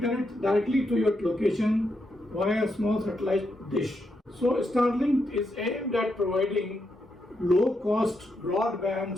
directly to your location via a small satellite dish. So Starlink is aimed at providing low-cost broadband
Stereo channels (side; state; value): both; normal; correlation 0.82